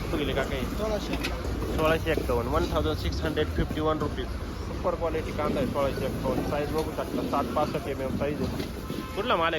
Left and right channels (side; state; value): both; identical; correlation 1.00